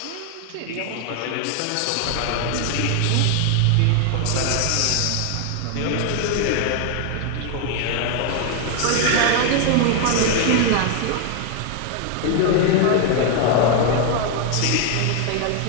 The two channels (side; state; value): both; different; correlation 0.01